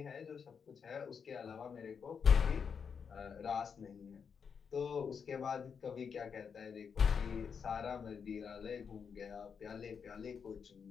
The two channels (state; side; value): quieter; right; 6.5 dB